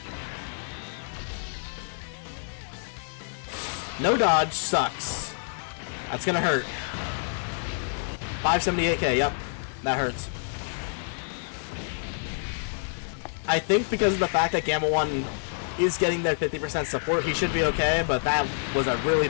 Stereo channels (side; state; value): right; silent; digital silence